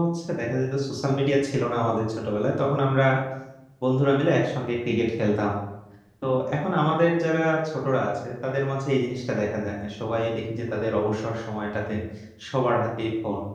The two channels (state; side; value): identical; both; correlation 1.00